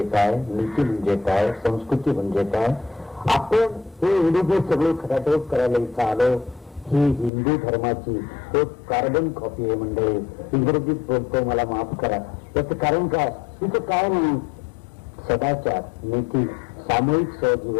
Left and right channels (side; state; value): right; drops out; at 7.3 s